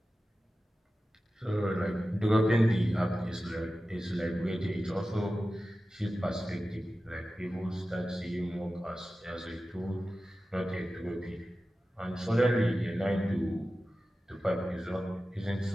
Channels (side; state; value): both; normal; correlation 0.94